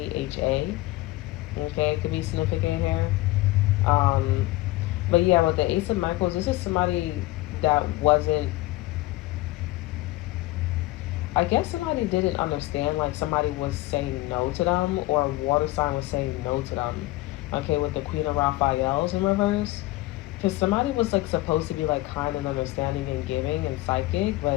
Okay, it could be significant here. Um, but yeah, with the Ace of Michaels, this is somebody that wasn't. I guess somebody didn't understand. Like somebody was saying no to them, or a water sign was saying no to them. Okay, with the Queen of Raphael's in reverse, because somebody was like supposed to be like kind and understanding and giving and psychic,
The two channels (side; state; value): right; quieter; 18.8 dB